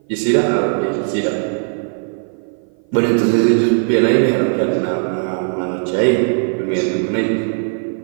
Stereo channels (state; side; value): silent; left; 57 dB below the other